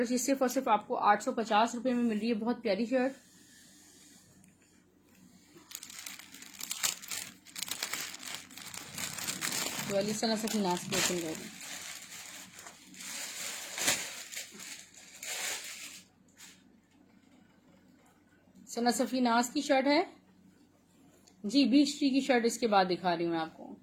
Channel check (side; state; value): both; identical; correlation 1.00